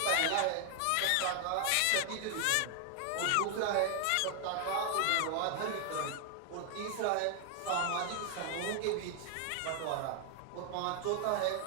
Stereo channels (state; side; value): different; both; correlation 0.00